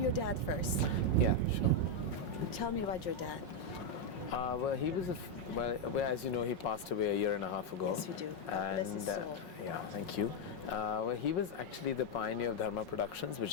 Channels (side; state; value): right; late; 5.5 ms